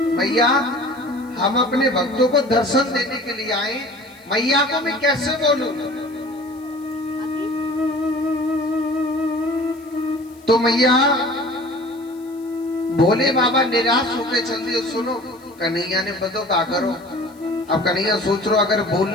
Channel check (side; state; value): left; noise; hiss, 28 dB below the sound